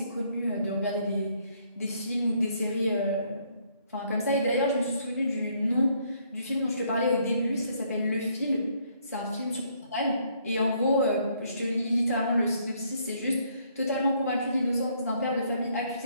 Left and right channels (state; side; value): inverted; both; correlation -0.68